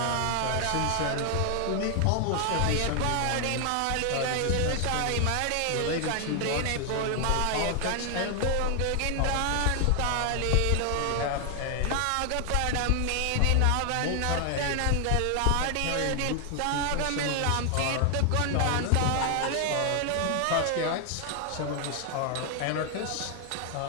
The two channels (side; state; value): both; different; correlation 0.00